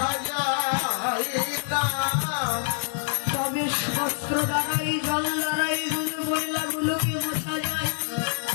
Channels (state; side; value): silent; right; digital silence